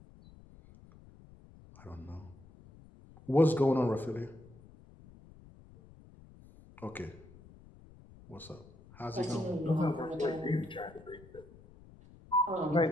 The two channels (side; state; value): left; noise; rumble, 22 dB below the sound